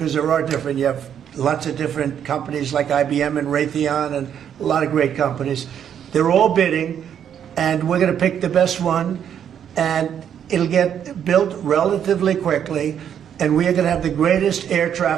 there are different. You have lots of different companies like IBM and Raytheon and a lot of great companies. They're all bidding, and we're going to pick the best one, and it'll get built relatively quickly, and we are going to have the greatest air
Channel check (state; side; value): quieter; left; 8.9 dB